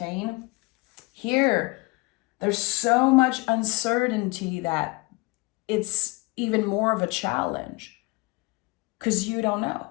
Here, there's so much uncertainty that it's even more of a challenge because you don't know.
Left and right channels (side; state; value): right; quieter; 26.1 dB